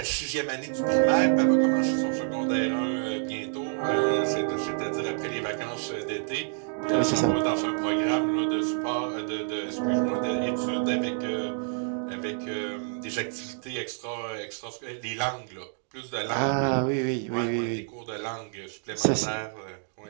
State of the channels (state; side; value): silent; left; digital silence